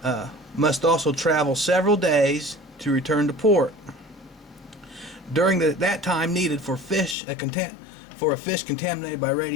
must also travel several days to return to port. During that time needed for a fish contaminated by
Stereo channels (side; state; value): right; drops out; at 7.2 s